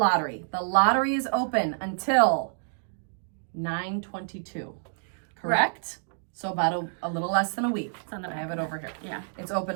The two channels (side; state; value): left; silent; digital silence